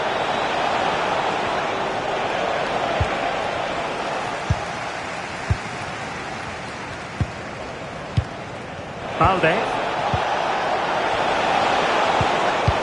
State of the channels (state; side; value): identical; both; correlation 1.00